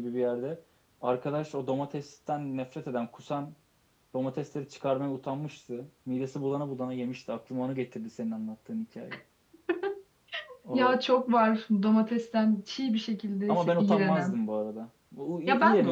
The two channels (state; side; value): identical; both; correlation 1.00